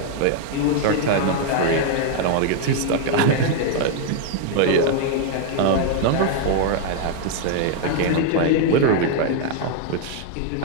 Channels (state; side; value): different; both; correlation 0.00